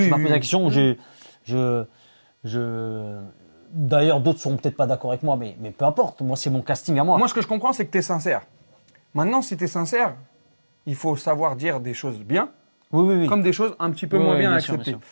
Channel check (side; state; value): both; inverted; correlation -1.00